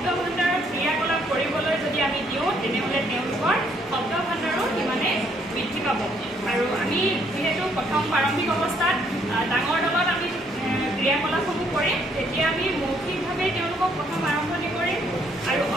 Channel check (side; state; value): both; normal; correlation 0.68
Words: ভাণ্ডাৰৰ ক্ৰিয়াকলাপ কৰিবলৈ যদি আমি দিওঁ তেনেহ'লে তেওঁলোকৰ শব্দ ভাণ্ডাৰো সিমানে বৃদ্ধি পাব। আৰু আমি যিহেতু প্ৰথম প্ৰাৰম্ভিক অৱস্থাত ডাঙৰ দলত আমি ক্ৰিয়াকলাপসমূহ কৰিম, তেতিয়া আমি মৌখিকভাৱে তেওঁলোকক প্ৰথম আৰম্ভণি কৰিম আৰু